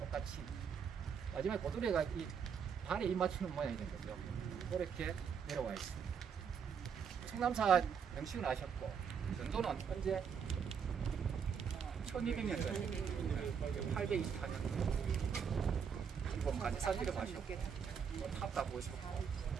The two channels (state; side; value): quieter; left; 7.0 dB